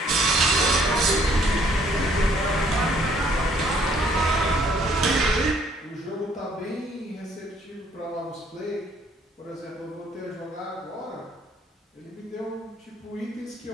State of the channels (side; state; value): both; normal; correlation 0.63